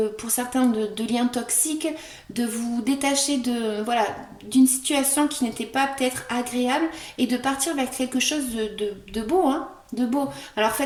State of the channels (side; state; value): both; identical; correlation 1.00